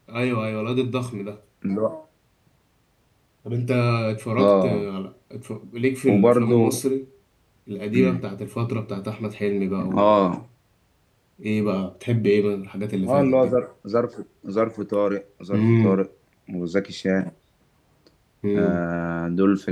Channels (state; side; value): identical; both; correlation 1.00